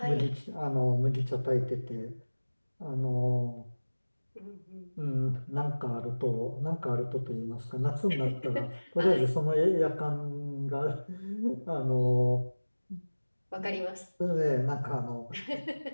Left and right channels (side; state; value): both; inverted; correlation -1.00